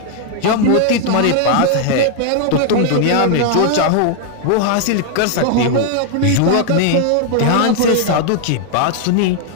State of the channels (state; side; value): different; both; correlation 0.00